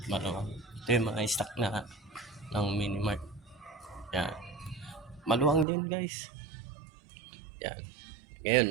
Maluwang. Ito yung mga stock na ng Minimart. Yan. Maluwang din guys. Yan.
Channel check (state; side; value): drops out; left; at 5.7 s